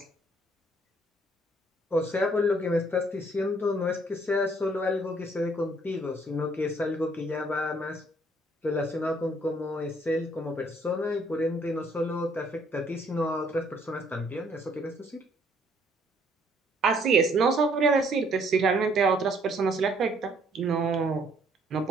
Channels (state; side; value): normal; both; correlation 0.64